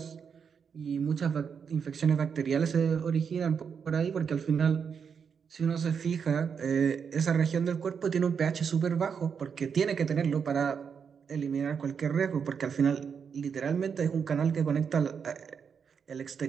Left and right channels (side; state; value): left; quieter; 6.6 dB